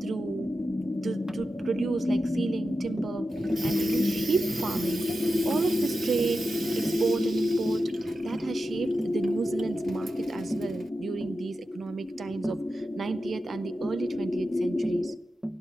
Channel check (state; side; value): normal; both; correlation 0.91